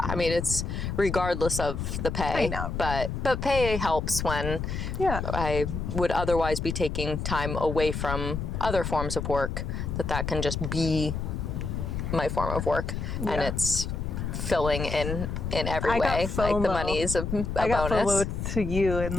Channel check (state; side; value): noise; left; rumble, 3 dB below the sound